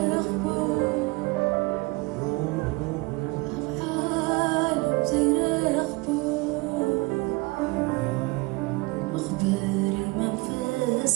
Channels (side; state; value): left; quieter; 25.1 dB